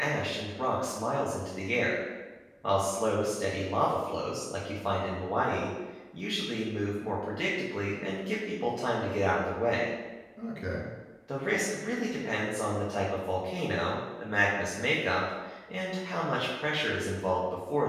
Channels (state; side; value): identical; both; correlation 1.00